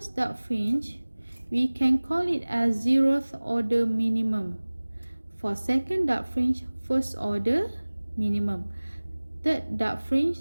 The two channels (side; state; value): both; inverted; correlation -1.00